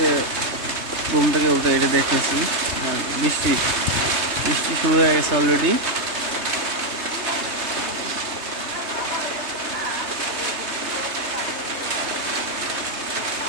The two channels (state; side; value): late; left; 3.2 ms